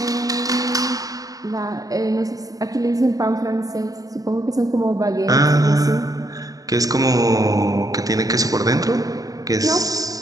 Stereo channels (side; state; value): left; late; 0.18 ms